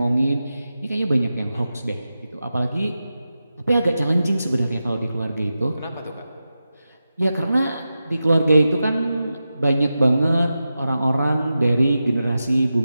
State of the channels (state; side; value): inverted; both; correlation -0.92